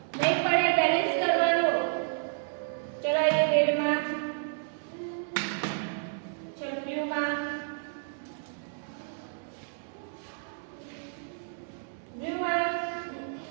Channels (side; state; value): left; silent; 57 dB below the other